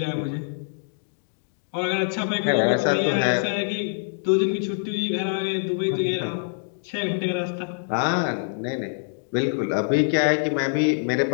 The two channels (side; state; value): right; silent; digital silence